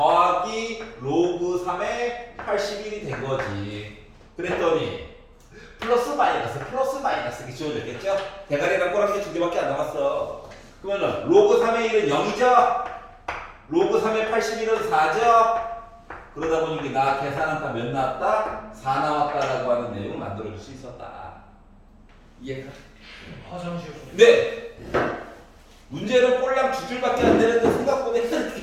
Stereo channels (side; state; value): both; identical; correlation 1.00